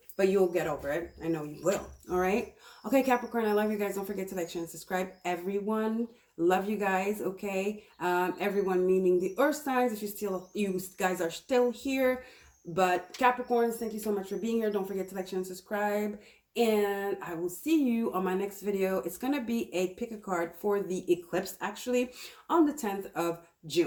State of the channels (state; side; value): identical; both; correlation 1.00